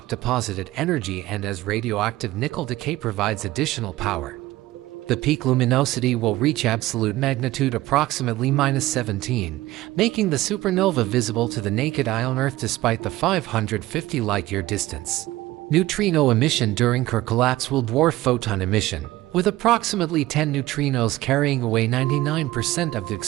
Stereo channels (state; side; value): quieter; left; 17.1 dB